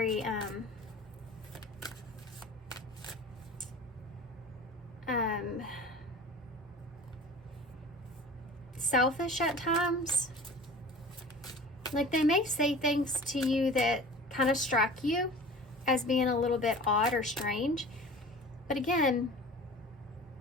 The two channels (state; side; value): normal; both; correlation 0.40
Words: selfish at times. Like they may say things to you that kind of strike you as being a little bit odd or strange. But again,